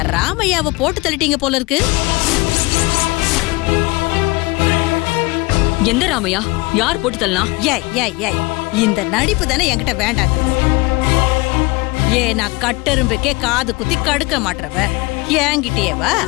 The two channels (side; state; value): right; quieter; 23.9 dB